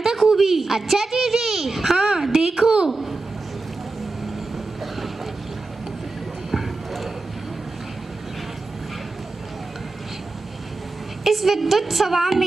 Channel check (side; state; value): left; quieter; 3.4 dB